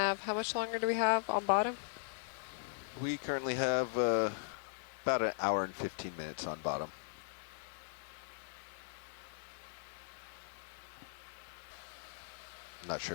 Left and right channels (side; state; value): right; silent; 52 dB below the other